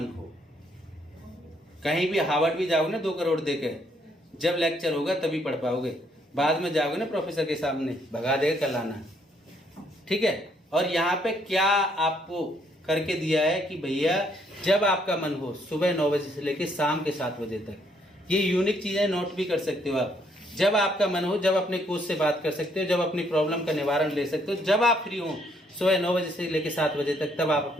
हो। कहीं भी हार्वर्ड भी जाओगे ना 2 करोड़ देके, जब लेक्चर होगा तभी पढ़ पाओगे। बाद में जाओगे ना प्रोफेसर के सामने, भगा देगा कल आना, ठीक है। और यहाँ पे क्या आपको करके दिया है कि भैया जब आपका मन हो, सुबह 9 बजे से लेकर शाम के 7 बजे तक, ये यूनिक चीज़ें नोट भी कर सकते हो आप। जब आपका मन हो, जब अपने कोच से बात कर सकते हो, जब अपनी प्रॉब्लम का निवारण ले सकते हो, जब आप फ्री हो सुबह 9 बजे से लेकर 7 बजे तक, तब आप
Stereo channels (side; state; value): both; normal; correlation 0.70